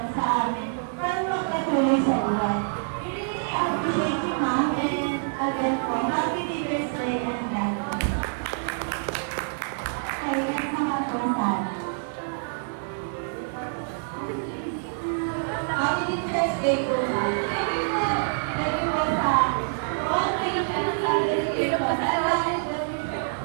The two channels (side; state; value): left; silent; 61 dB below the other